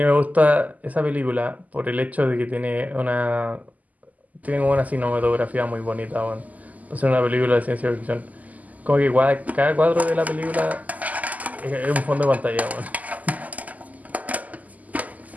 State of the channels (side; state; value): left; late; 0.078 ms